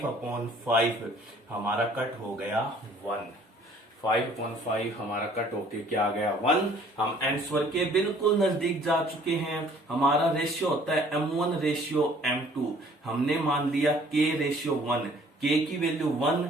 अपॉन 5 हमारा कट हो गया 1, 5/5 हमारा कट होके क्या आ गया 1। हम आंसर के बिल्कुल नजदीक जा चुके हैं। हमारा रेशियो होता है m1 रेशियो m2, हमने मान लिया k रेशियो 1, k की वैल्यू 1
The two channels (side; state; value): both; normal; correlation 0.56